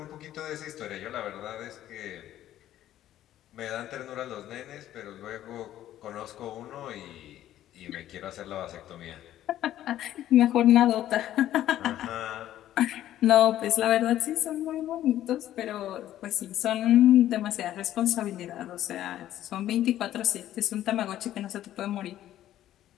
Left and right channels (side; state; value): right; quieter; 12.7 dB